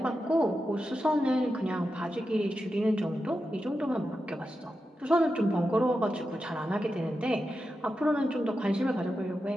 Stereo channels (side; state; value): both; normal; correlation 0.89